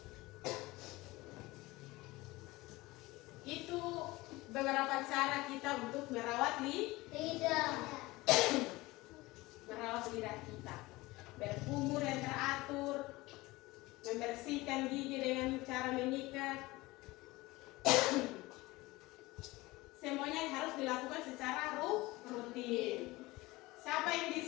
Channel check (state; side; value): quieter; right; 20.6 dB